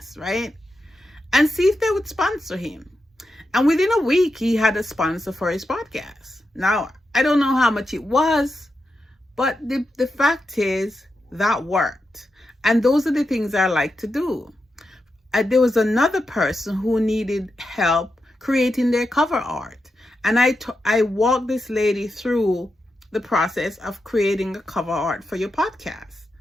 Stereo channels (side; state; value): both; normal; correlation 0.88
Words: right? And see if they would sponsor him. And within a week, he had a sponsor for his podcast. Now, I don't know how much it was, but the fact is that worked. And those are the things I like to do. There was another person who needed help creating their cover art. And I walked this lady through the process of creating a cover art for your podcast.